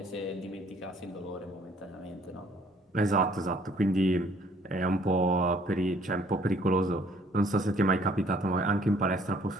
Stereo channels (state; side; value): normal; both; correlation 0.60